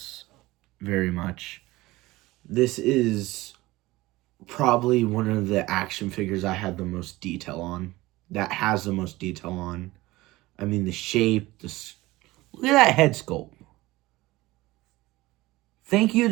very much. This is probably one of the action figures I have the most detail on. That has the most detail on. I mean, the shape, look at that head sculpt. Thank you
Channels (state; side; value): quieter; left; 19.1 dB